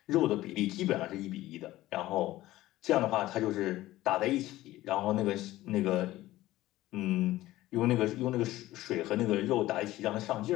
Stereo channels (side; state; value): right; quieter; 16.3 dB